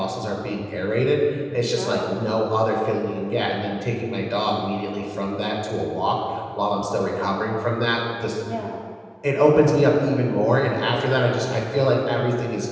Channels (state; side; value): identical; both; correlation 1.00